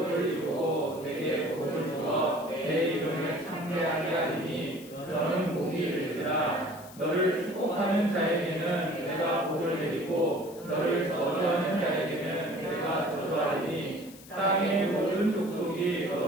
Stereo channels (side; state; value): left; noise; hiss, 20 dB below the sound